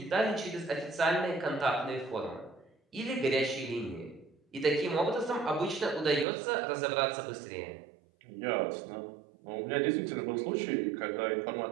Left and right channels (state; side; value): drops out; left; at 6.2 s